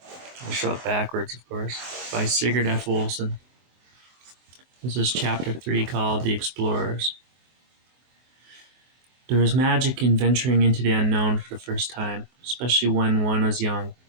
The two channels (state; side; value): late; left; 24 ms